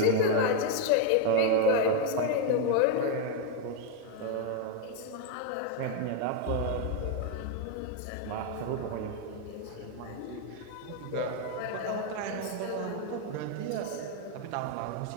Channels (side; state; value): both; different; correlation 0.01